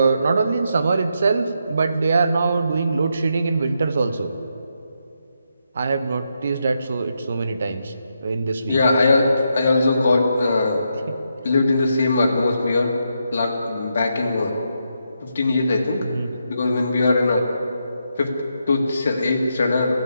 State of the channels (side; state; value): both; inverted; correlation -0.82